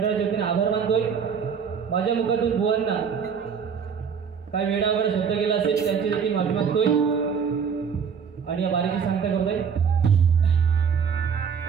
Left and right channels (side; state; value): left; quieter; 6.7 dB